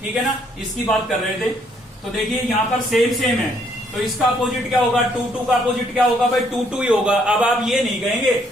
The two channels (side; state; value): both; normal; correlation 0.68